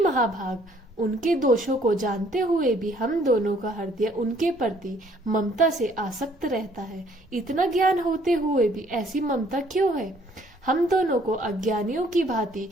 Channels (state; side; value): normal; both; correlation 0.61